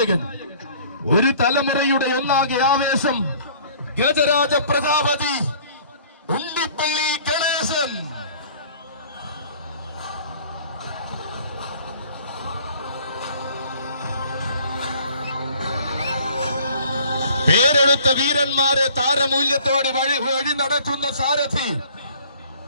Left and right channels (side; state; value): both; inverted; correlation -0.53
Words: ഒരു തലമുറയുടെ ഒന്നാകെ ആവേശം, ഗജരാജ പ്രജാപതി ഉണ്ണിപ്പള്ളി ഗണേശൻ. പേരെടുത്ത വീരന്മാരെ താരമൂല്യത്തോടെ വഴി നടത്തുന്ന സാരഥി,